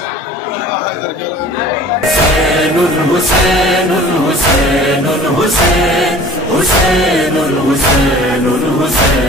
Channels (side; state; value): both; normal; correlation 0.45